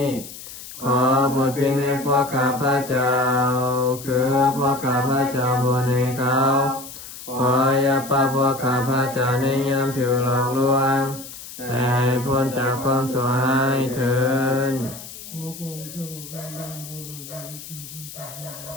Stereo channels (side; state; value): left; noise; hiss, 13 dB below the sound